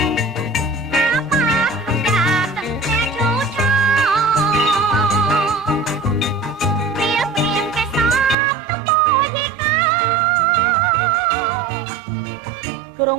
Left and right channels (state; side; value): drops out; left; at 8.3 s